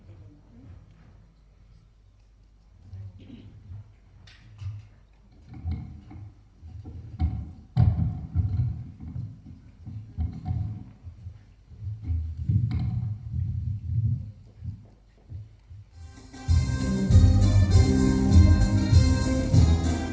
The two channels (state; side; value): identical; both; correlation 1.00